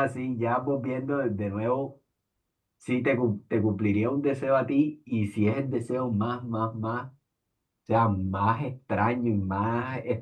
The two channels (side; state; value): both; identical; correlation 1.00